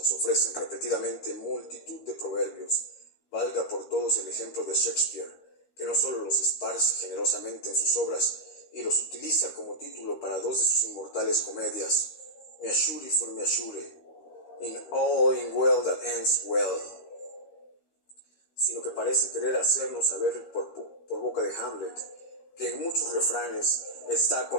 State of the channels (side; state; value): right; late; 13 ms